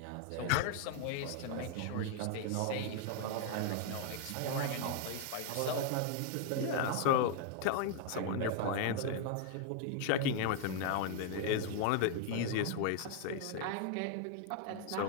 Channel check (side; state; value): both; different; correlation 0.00